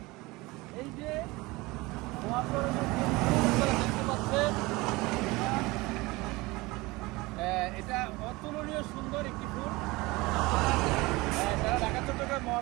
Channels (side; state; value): left; quieter; 22.2 dB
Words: এই যে মহাসড়কের দেখতে পাচ্ছেন, এটা অতুলনীয় সুন্দর একটি ফুল। যারা ঢাকা চট্টগ্রাম